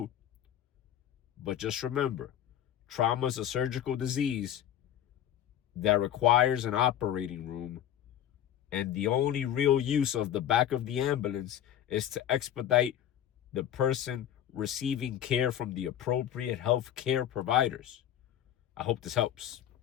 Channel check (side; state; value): right; quieter; 10.7 dB